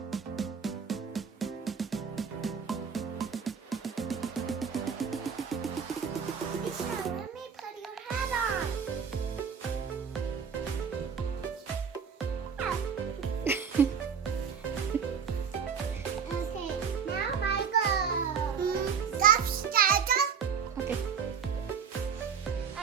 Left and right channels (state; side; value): quieter; left; 6.6 dB